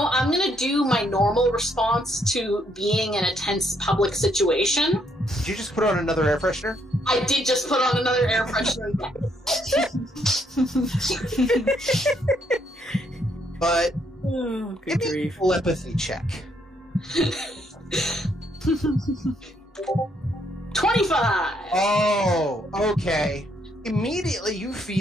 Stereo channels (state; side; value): normal; both; correlation 0.72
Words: going to do my normal response to being in a tense public situation. Did you just put on another air freshener? I did just put on another air freshener. But good grief. Telepathy check. 25! Oh, okay. Immediately you